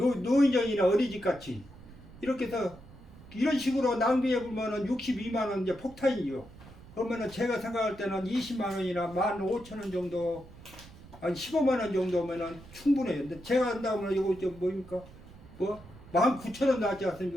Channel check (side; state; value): right; noise; rumble, 19 dB below the sound